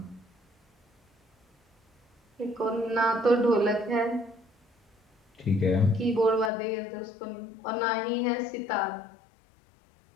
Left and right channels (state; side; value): drops out; right; at 6.5 s